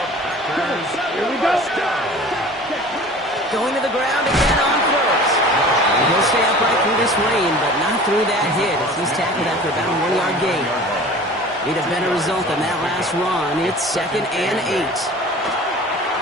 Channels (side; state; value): both; normal; correlation 0.43